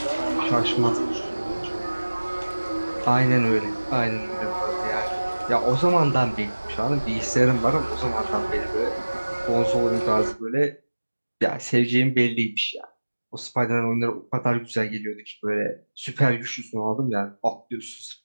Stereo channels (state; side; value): inverted; both; correlation -1.00